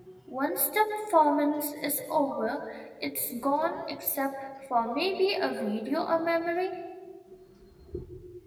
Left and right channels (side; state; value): both; identical; correlation 1.00